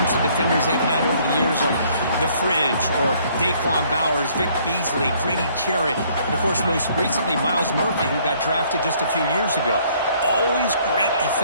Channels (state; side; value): inverted; both; correlation -0.62